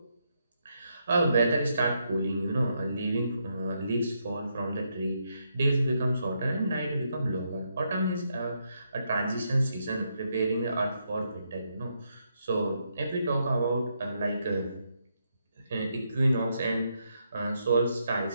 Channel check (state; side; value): inverted; both; correlation -0.79